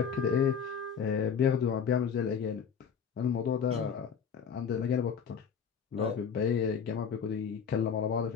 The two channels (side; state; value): right; quieter; 6.8 dB